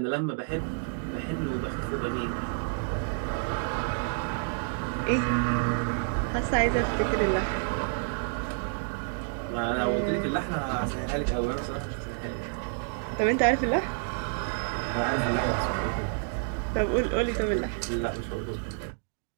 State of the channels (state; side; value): silent; left; 58 dB below the other